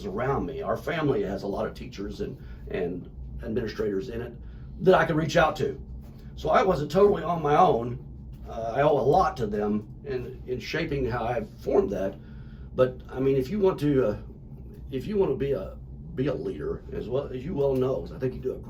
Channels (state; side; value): identical; both; correlation 1.00